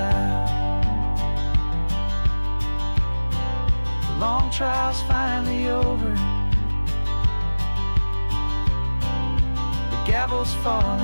The long trial's finally over, the gavel's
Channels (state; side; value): inverted; both; correlation -1.00